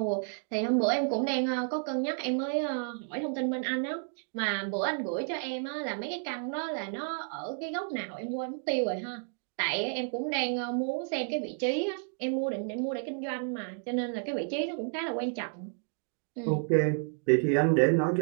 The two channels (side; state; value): left; silent; 57 dB below the other